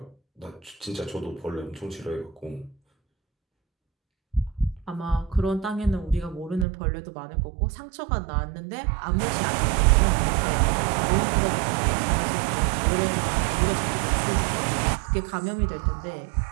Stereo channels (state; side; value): drops out; left; at 6.7 s